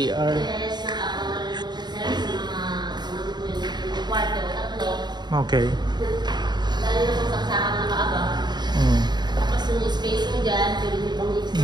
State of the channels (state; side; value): late; left; 0.21 ms